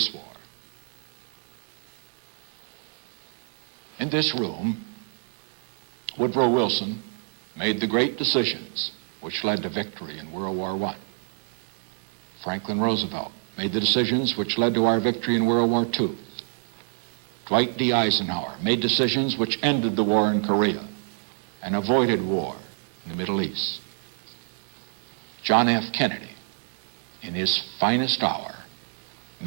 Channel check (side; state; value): left; silent; digital silence